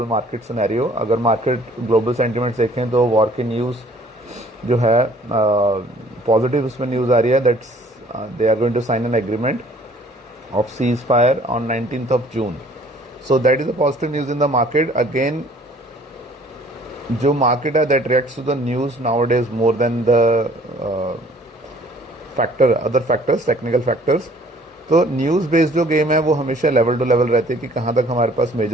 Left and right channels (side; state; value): both; normal; correlation 0.56